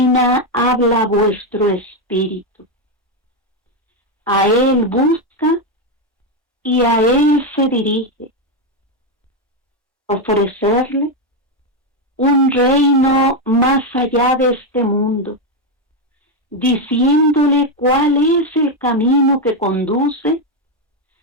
habla a vuestro espíritu. A él busca y a él se dirige. Ofrecerle un reino más allá de este mundo, diciéndole cuál es el camino que conduce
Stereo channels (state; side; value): normal; both; correlation 0.06